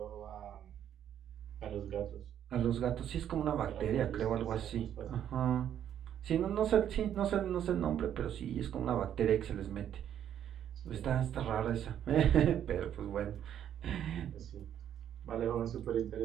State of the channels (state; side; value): quieter; left; 10.0 dB